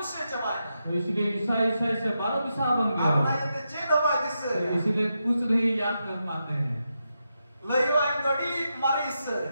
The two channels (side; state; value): both; inverted; correlation -0.86